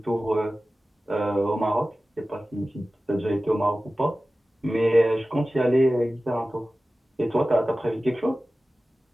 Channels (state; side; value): normal; both; correlation 0.96